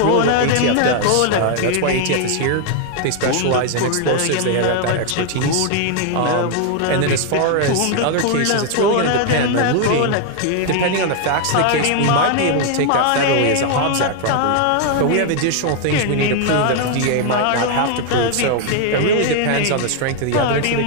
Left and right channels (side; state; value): both; different; correlation 0.00